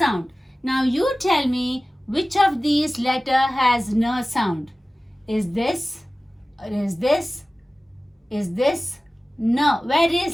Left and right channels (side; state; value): both; normal; correlation 0.97